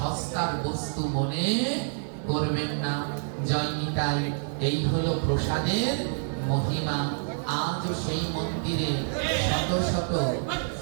বস্তু মনে করবেন না। জয় নিতাই। এই হলো প্রসাদের মহিমা। আজও সেই মন্দিরে শত শত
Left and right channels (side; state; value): left; silent; digital silence